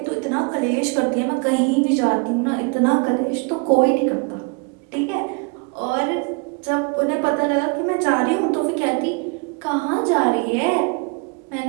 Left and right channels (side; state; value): left; quieter; 31.5 dB